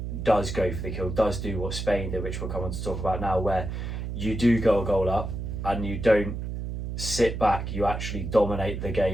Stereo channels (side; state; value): right; noise; hum, 5 dB below the sound